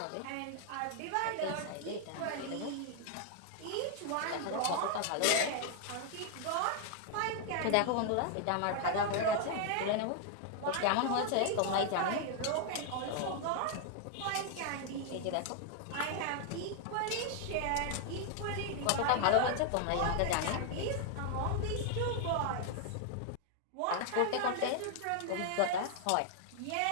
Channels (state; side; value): different; both; correlation 0.00